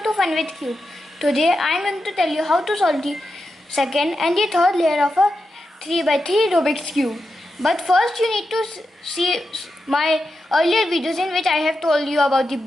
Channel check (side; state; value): both; normal; correlation 0.88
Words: to Fun with Cube. Today I am going to tell you how to solve the second and the third layer of a 3x3 Rubik's Cube. But first you need to see my earlier videos in which I have told you about the